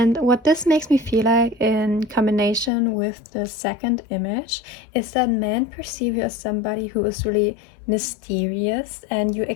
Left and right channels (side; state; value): right; drops out; at 2.7 s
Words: what this makes me feel like in combination with the second image is that men perceive you as somebody who is really mysterious, and you